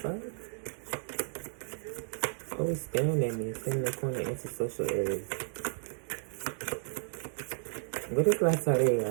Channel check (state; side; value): silent; left; digital silence